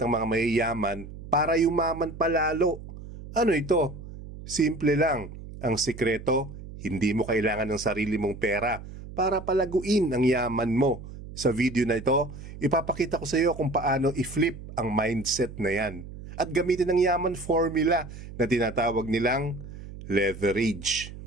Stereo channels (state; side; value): noise; right; hum, 13 dB below the sound